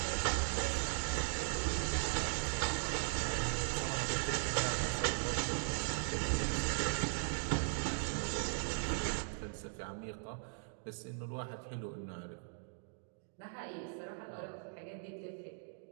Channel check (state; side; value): silent; left; digital silence